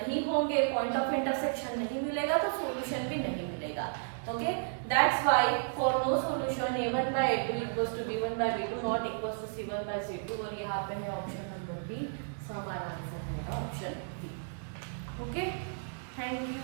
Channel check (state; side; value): silent; left; digital silence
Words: होंगे, पॉइंट ऑफ इंटरसेक्शन नहीं मिलेगा तो सॉल्यूशन भी नहीं मिलेगा। Okay, that's why for no solution a1 by a2 equals to b1 by b2 not equals to c1 by c2। और यहाँ पे है ऑप्शन नंबर बी, सो हमारा आंसर है option B. Okay, thank you.